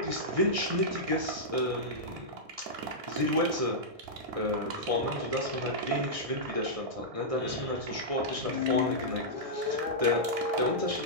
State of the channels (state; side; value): late; left; 1.6 ms